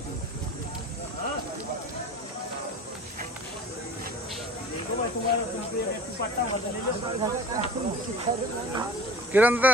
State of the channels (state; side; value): normal; both; correlation 0.40